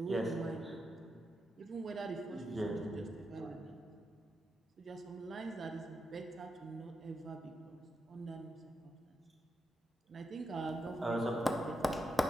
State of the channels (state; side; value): normal; both; correlation 0.85